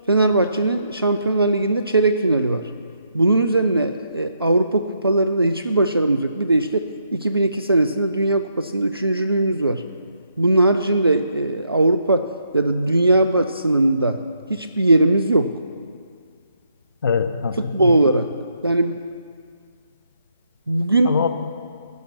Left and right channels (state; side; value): inverted; both; correlation -0.76